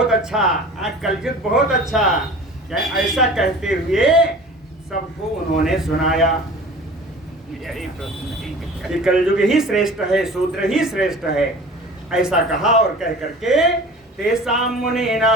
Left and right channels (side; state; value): both; normal; correlation 0.41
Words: अच्छा, कलयुग बहुत अच्छा। ऐसा कहते हुए सबको उन्होंने सुनाया। ये कलयुग ही श्रेष्ठ है, शूद्र ही श्रेष्ठ है, ऐसा कहा। और कह करके तेसाम मुनि